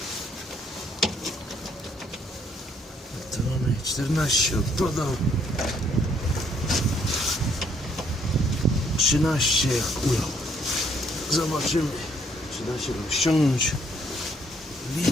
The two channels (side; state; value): both; normal; correlation 0.67